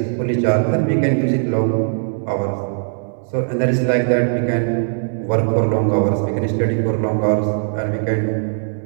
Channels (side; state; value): left; silent; 66 dB below the other